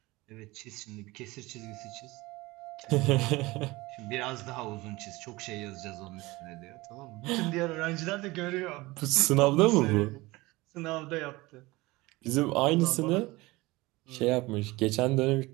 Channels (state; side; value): quieter; left; 21.3 dB